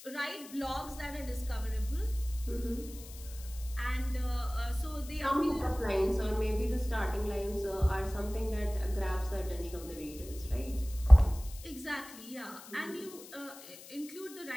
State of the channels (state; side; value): noise; left; hiss, 17 dB below the sound